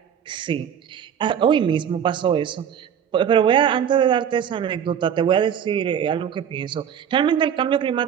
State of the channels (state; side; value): quieter; left; 8.6 dB